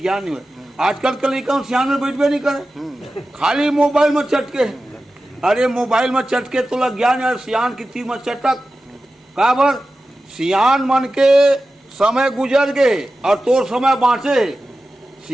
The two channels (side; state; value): both; normal; correlation 0.94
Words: नहीं हुआ। आजकल के लड़का सियान में बैठबे नहीं करे, खाली मोबाइल में चटके। अरे मोबाइल में चटके तो ज्ञान है, सियान की तीर में चटक काबर सियान मन के समय गुजर गए और तोर समय बाँचे।